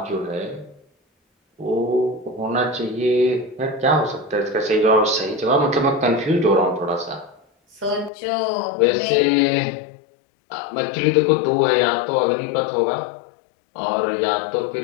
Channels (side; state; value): right; drops out; at 8.1 s